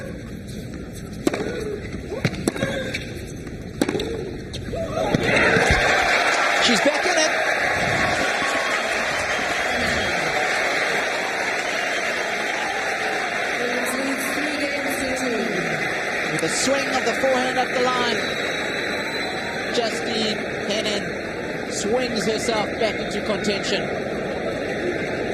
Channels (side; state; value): both; identical; correlation 1.00